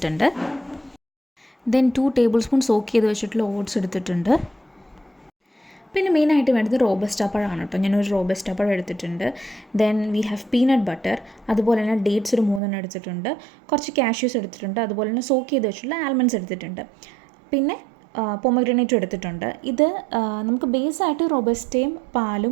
ദെൻ 2 ടേബിൾ സ്പൂൺ സോക്ക് ചെയ്ത് വെച്ചിട്ടുള്ള ഓട്സ് എടുത്തിട്ടുണ്ട്. പിന്നെ മെയിനായിട്ട് വേണ്ടത് റോബസ്റ്റ പഴമാണ് കേട്ടോ. ഞാനൊരു റോബസ്റ്റ പഴം എടുത്തിട്ടുണ്ട്. Then we have peanut butter, അതുപോലെ തന്നെ ഡേറ്റ്സ് ഒരു 3 എടുത്തിട്ടുണ്ട്. കുറച്ച് കാഷ്യൂസ് എടുത്തിട്ടുണ്ട്. അതുപോലെ തന്നെ സോക്ക് ചെയ്ത് വെച്ചിട്ടുള്ള ആൽമണ്ട്സ് എടുത്തിട്ടുണ്ട്. പിന്നെ പൊമഗ്രാനേറ്റും എടുത്തിട്ടുണ്ട്. ഇത് നമുക്ക് ബേസായിട്ട് റോബസ്റ്റയും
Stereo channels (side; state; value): left; drops out; at 12.6 s